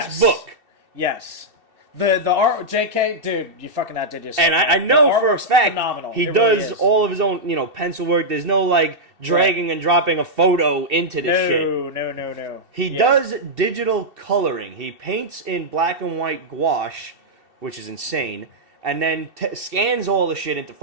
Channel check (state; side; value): late; left; 2.7 ms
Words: book. Yes. The art, JK, dude, you fucking outdid yourself. And I know for a fact phenomenal. he It does really is. all of his own, pencil work. There's no, dragging and dropping a photo into this shit. No. He does digital coloring. He paints in black and white gouache, which is insane, and then scans all the shit into